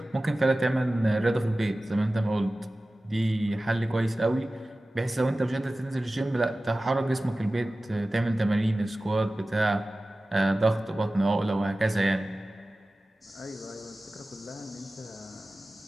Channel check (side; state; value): both; normal; correlation 0.96